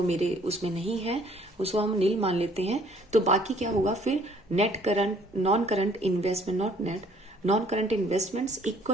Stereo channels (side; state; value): both; normal; correlation 0.60